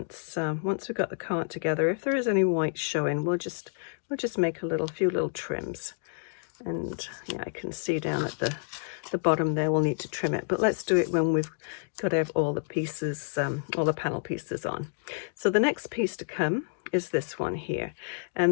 we've got the card together. If there is any white showing, we'll just make a few little trims. And yeah, I can see down at the bottom there, we'll need to trim it, but let's do it when we've got all the pieces, all the panel pieces on. So the next piece to come is this one here,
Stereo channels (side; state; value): right; silent; digital silence